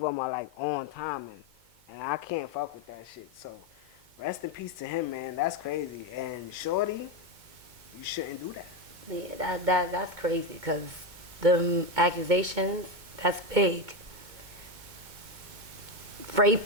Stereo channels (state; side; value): late; left; 2.2 ms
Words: are like on timing. And I can't fuck with that shit. So rest in peace to him, man. That's crazy. And Shorty, you shouldn't do that. Yeah, that's crazy because the accusations, that's big.